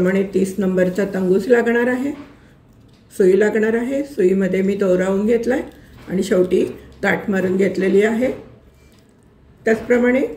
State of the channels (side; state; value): both; identical; correlation 1.00